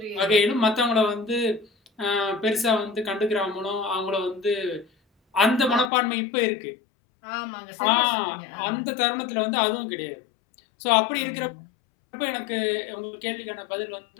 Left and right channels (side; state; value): right; drops out; at 5.9 s